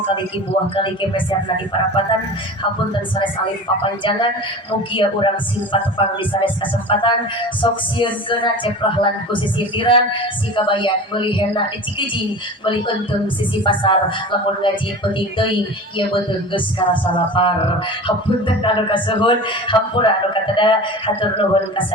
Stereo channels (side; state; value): both; normal; correlation 0.35